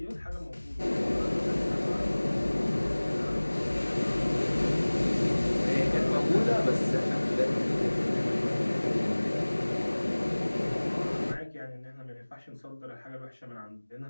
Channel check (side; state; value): both; inverted; correlation -1.00